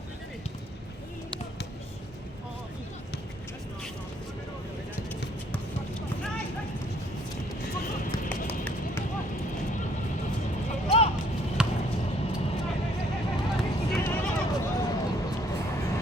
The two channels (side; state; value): both; normal; correlation 0.63